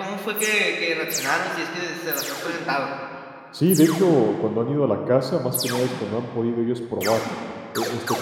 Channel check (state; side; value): identical; both; correlation 1.00